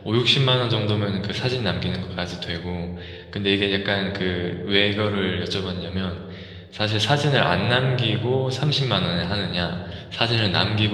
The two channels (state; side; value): identical; both; correlation 1.00